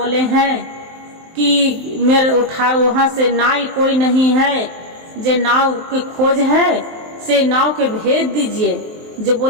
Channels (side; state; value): left; late; 23 ms